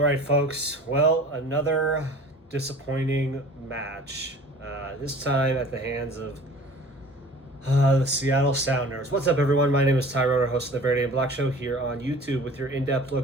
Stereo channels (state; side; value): normal; both; correlation 0.45